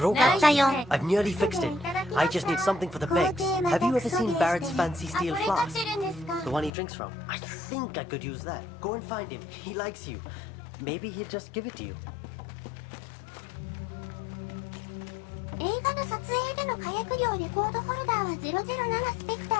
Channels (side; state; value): right; drops out; at 6.7 s